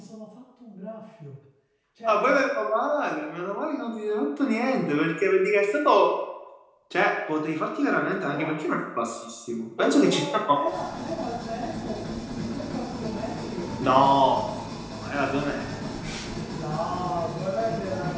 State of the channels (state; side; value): identical; both; correlation 1.00